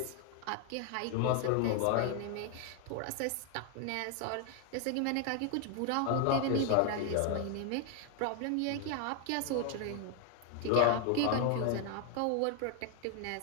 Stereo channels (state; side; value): different; both; correlation 0.00